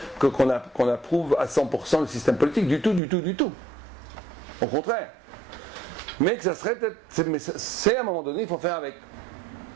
approuve à 100% le système politique, du tout. Au contraire. Mais que ça serait peut-être. C'est à un moment donné, il faut faire avec.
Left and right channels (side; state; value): left; drops out; at 3.0 s